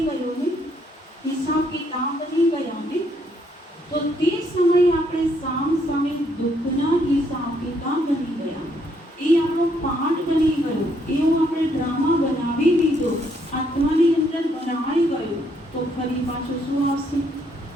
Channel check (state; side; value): normal; both; correlation 0.72